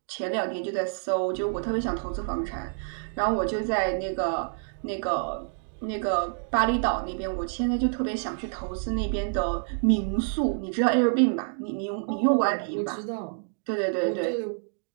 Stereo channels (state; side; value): silent; left; digital silence